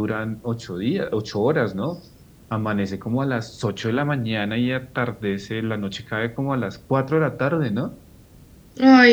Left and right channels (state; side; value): identical; both; correlation 1.00